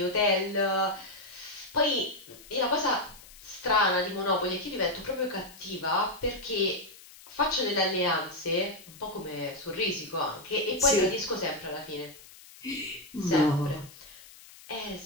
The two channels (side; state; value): left; noise; hiss, 20 dB below the sound